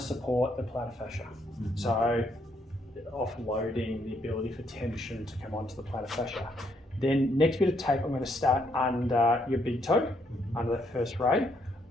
support the plantar fascia. So offloading the ability for tension to come onto the plantar fascia. Then next bit of tape, I'm going to start under your big toe, under that first ray.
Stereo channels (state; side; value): normal; both; correlation 0.72